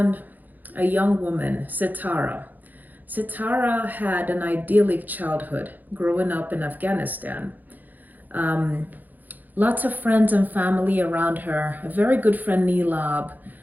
a young woman, Sitara. Sitara had an idyllic childhood growing up in Afghanistan. Um, Lots of friends and family around her, a very good friend, Nilab.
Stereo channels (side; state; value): left; late; 0.084 ms